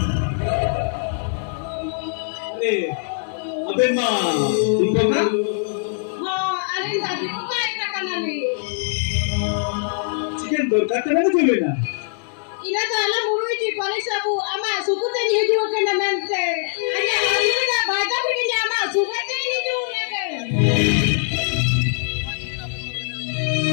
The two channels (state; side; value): silent; right; 64 dB below the other